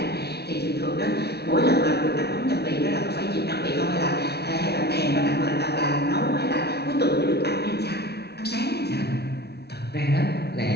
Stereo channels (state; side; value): late; right; 0.48 ms